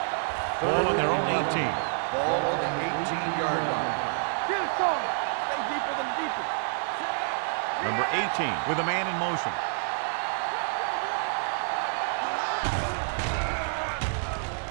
Ball on their own 18. Ball on the 18-yard line. Get it, son. Stay deeper than the deepest. Number 18 with a man in motion. Let's go, boys.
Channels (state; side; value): silent; left; digital silence